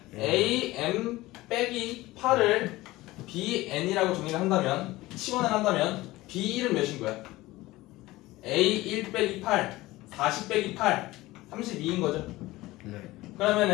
A M 빼기 8을 B N이라고 정리를 한다면 치환을 한다면 B 1은 몇인 거야? A 1 빼기 8 40 빼기 8 32인 거죠. 네.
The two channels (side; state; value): right; quieter; 18.6 dB